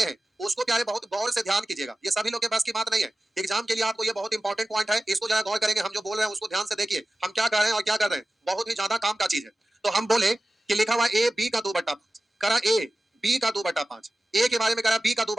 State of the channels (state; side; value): normal; both; correlation 0.95